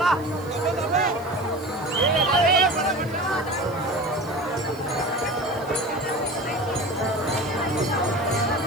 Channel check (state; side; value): noise; right; hiss, 24 dB below the sound